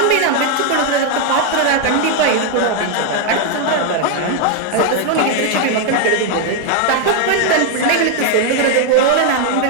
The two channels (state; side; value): different; both; correlation 0.00